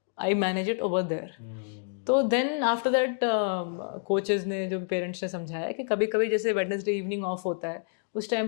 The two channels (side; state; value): right; silent; digital silence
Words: I manage it over there। तो then after that coaches ने, जो पेरेंट्स ने समझाया कि कभी कभी जैसे वेडनेसडे इवनिंग ऑफ होता है, उस टाइम